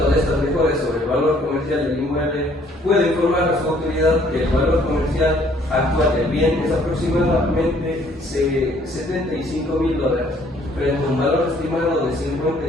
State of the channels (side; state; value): both; normal; correlation 0.62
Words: de estas mejoras sobre el valor comercial del inmueble, puede informar a su autoridad que el valor comercial actual del bien es aproximadamente $75.000, frente a un valor estimado de